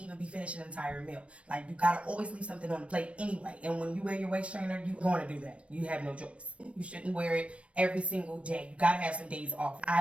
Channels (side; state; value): left; late; 0.062 ms